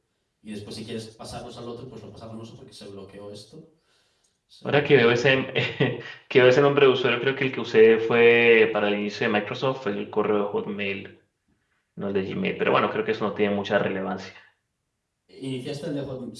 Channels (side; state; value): both; identical; correlation 1.00